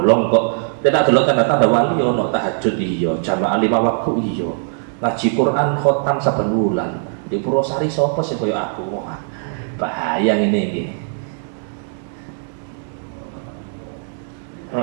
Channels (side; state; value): left; silent; 66 dB below the other